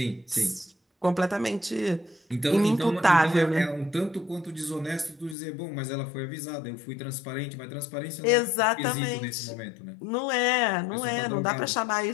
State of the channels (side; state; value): right; drops out; at 5.4 s